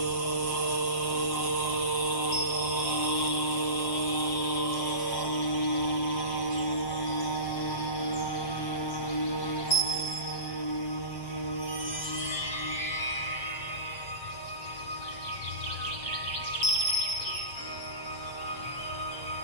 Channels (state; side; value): late; right; 7.6 ms